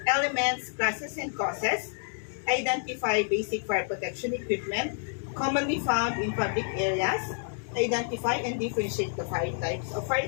elements, classes, and causes, identify basic fire protection equipment commonly found in public areas, identify and differentiate the fire types of fire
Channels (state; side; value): silent; right; 59 dB below the other